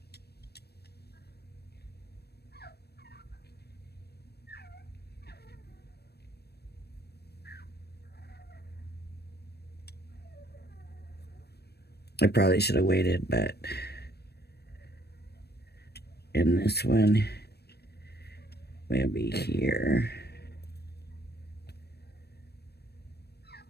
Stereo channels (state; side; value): late; right; 0.47 ms